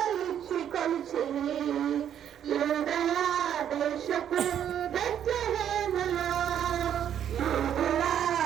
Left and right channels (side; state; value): left; quieter; 9.6 dB